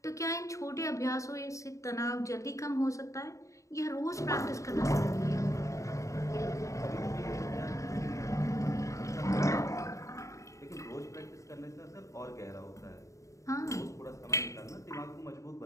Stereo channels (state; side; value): late; right; 0.15 ms